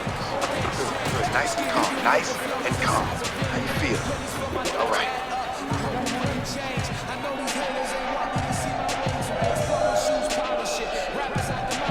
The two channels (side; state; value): both; identical; correlation 1.00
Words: Good. Nice and calm. Nice and calm. How you feel? All right.